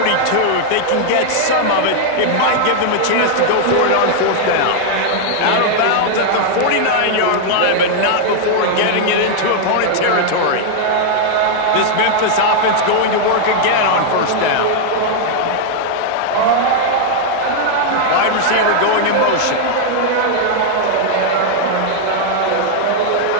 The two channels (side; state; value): both; different; correlation 0.00